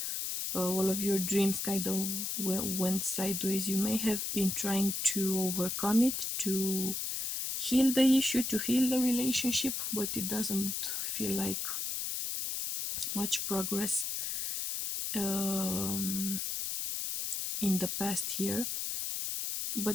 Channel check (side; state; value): left; noise; hiss, 2 dB below the sound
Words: All of your dreams kind of went sideways. You may have been trying to overcome it, to heal the issue, to heal the relationship, but it doesn't feel like much progress in the past year.